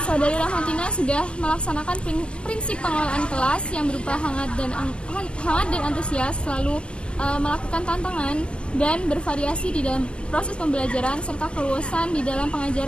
Saudari Rahmatina sudah melaksanakan prinsip pengelolaan kelas yang berupa hangat dan antusias, selalu melakukan tantangan dan bervariasi di dalam proses pembelajaran serta keluasan di dalam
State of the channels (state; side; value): late; right; 0.056 ms